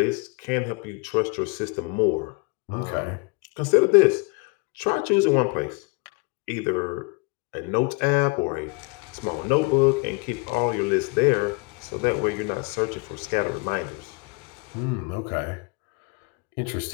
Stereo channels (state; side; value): quieter; right; 29.8 dB